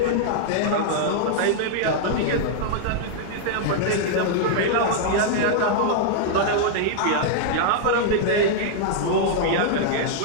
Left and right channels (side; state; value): both; different; correlation -0.01